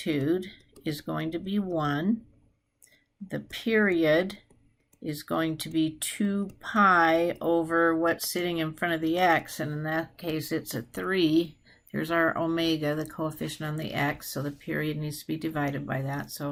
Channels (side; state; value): both; identical; correlation 1.00